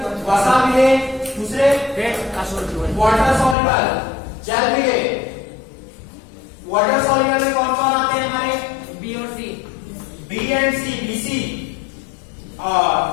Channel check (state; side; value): drops out; right; at 3.6 s